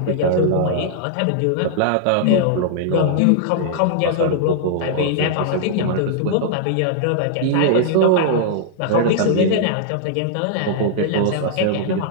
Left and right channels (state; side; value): different; both; correlation -0.01